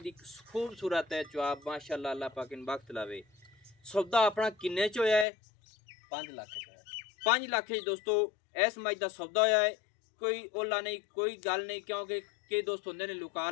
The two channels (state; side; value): drops out; right; at 5.2 s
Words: ਦੀ ਖੂਬਸੂਰਤ ਹੈ ਚੁਆਬ ਮਾਸ਼ਾਅੱਲਾ। ਅੱਲਾਹ ਪਾਕ ਨੂੰ ਬਖਤ ਲਾਵੇ। ਸੌਦਾ ਆਪਣਾ ਕਿੰਨੇ ਚ ਹੋਇਆ ਹੈ? 5 लाख का 5 ਲੱਖ ਚ ਦੋਸਤੋ ਇਸ ਮੱਝ ਦਾ ਸੌਦਾ ਹੋਇਆ ਹੈ। ਕੋਈ ਓਲਾ ਨਹੀਂ, ਕੋਈ ਗੱਲ ਨਹੀਂ, ਕਿਉਂਕਿ ਕਈ ਦੋਸਤ ਹੁੰਦੇ ਨੇ ਲੁਕਾ